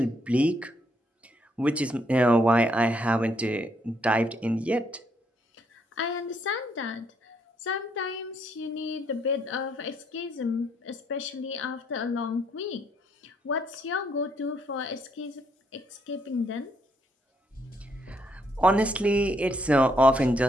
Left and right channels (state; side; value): normal; both; correlation 0.72